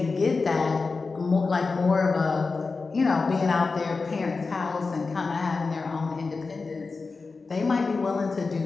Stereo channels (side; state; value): right; quieter; 4.2 dB